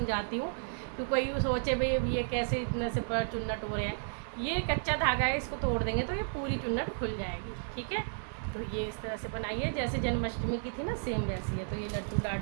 हूँ कि कोई सोचे भाई ये कैसे इतने से चुन्नट हो रहे हैं। ये कच्चा धागा है, इसको तोड़ देंगे तो ये पूरी चुन्नट खुल जाएगी। ठीक है, तो ये इस तरह से बनाई है जैसे जन्माष्टमी की थी ना, सेम वैसी है। तो ये लड्डू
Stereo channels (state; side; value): silent; left; digital silence